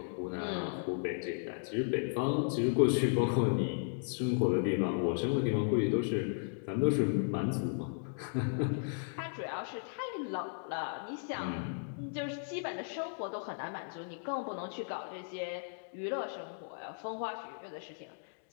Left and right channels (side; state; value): right; silent; digital silence